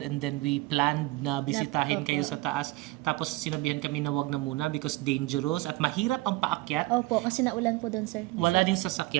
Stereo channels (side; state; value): left; quieter; 20.0 dB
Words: and then we planned na bisitahin kayo sa taas. Tapos sinabihan kami na wag na muna because dangerous at mahirap ang paakyat. Opo, kasi naulan po doon sir. Wala ding